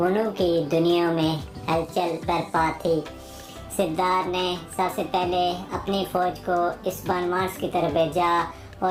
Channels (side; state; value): both; identical; correlation 1.00